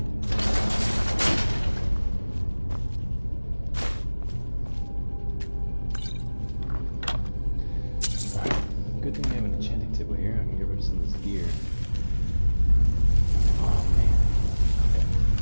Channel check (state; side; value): inverted; both; correlation -1.00